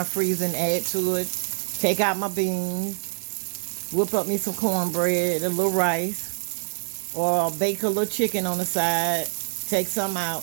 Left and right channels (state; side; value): silent; left; 61 dB below the other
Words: freezer and add to it, take out my beans, whip up me some cornbread, a little rice, or bake a little chicken on the side, take some